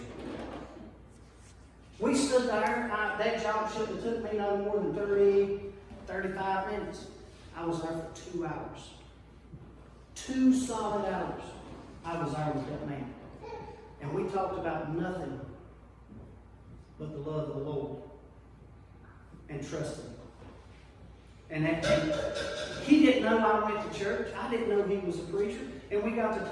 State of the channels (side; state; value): both; identical; correlation 1.00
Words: We stood there. That job shouldn't have took me no more than 30, 35 minutes. I was there for 2 hours. 2 solid hours I was there with that man. And we talked about nothing but the love of the Lord and trusting Him. And he didn't know I went to church. I didn't know he was a preacher. And we got to